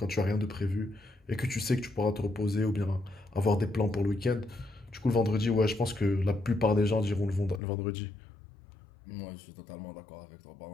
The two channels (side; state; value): right; drops out; at 7.6 s